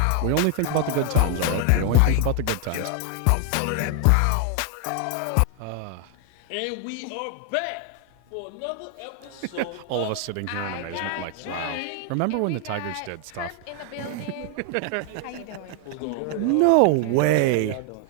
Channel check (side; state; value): both; different; correlation 0.00